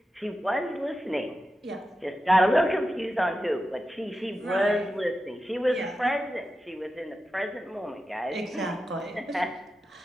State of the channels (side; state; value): both; normal; correlation 0.91